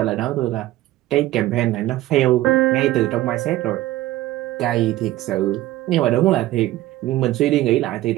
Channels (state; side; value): quieter; left; 16.0 dB